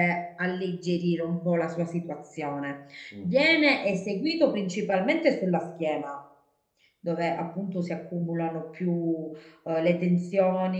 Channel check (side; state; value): both; identical; correlation 1.00